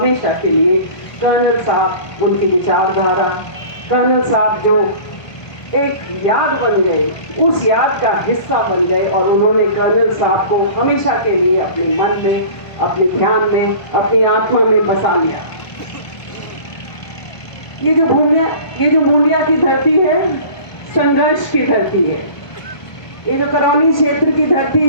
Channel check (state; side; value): late; right; 1.2 ms